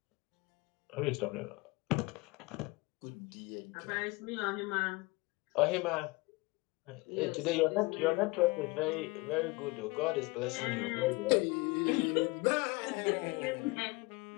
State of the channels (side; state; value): right; quieter; 24.6 dB